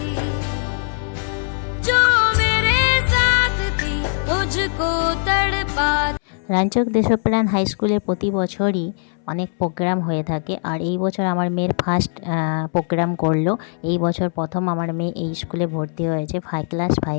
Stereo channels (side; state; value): right; silent; 63 dB below the other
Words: जो मेरे साथ थी मुझको तड़पा। রানীচক দেশপ্রাণ হাই স্কুলে প্রতি বছরই অনেক প্রোগ্রাম হয়ে থাকে, আর এই বছর আমার মেয়ের ফার্স্ট প্রোগ্রাম করলো। এই বছর প্রথম আমার মেয়ে এই স্কুলে ভর্তি হয়েছে, ক্লাস